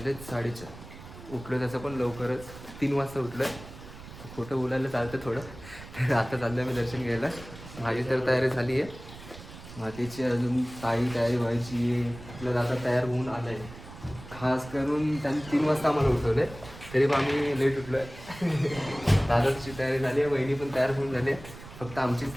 4:30. उठलो तसं पण लवकरच 3 वाजता उठलं आहे. खोटं बोलायला चालतं थोडं. तर आता चाललो आम्ही दर्शन घ्यायला. माझी तर तयारी झाली आहे, मातीची अजून काही तयारी व्हायची आहे. आपलं दादा तयार होऊन आलं आहे. खास करून त्यांनी 3 वाजता आम्हाला उठवलं आहे, तरी पण आम्ही लेट उठलो आहे. दादाची तयारी झाली आहे, वहिनी पण तयार होऊन झाली आहे. फक्त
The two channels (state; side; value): noise; right; rumble, 15 dB below the sound